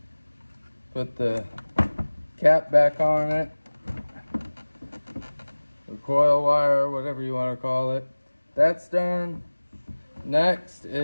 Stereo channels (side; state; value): both; inverted; correlation -1.00